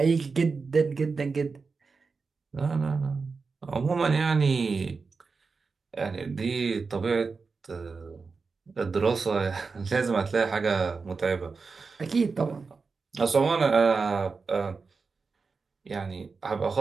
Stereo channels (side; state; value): left; quieter; 4.6 dB